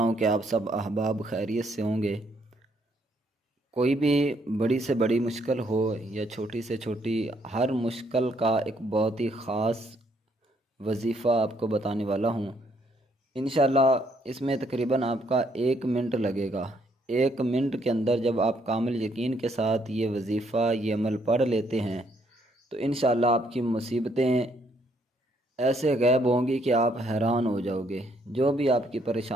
कि आप सब अहबाब खैरियत से होंगे। कोई भी बड़ी से बड़ी मुश्किल हो या छोटी से छोटी, हर मुश्किल का एक बहुत ही ख़ास वजीफ़ा आपको बताने वाला हूँ। इंशाल्लाह इसमें तकरीबन आपका 1 मिनट लगेगा। 1 मिनट के अंदर जब आप कामिल यकीन के साथ ये वजीफ़ा, ये अमल पढ़ लेते हैं तो इंशाल्लाह आपकी मुसीबतें ऐसे गायब होंगी कि आप हैरान हो जाओगे। जो भी आपकी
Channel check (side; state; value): both; normal; correlation 0.70